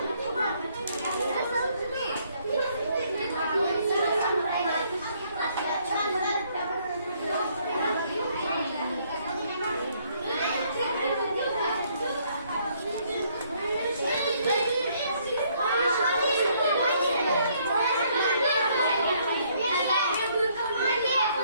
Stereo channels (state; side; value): inverted; both; correlation -0.67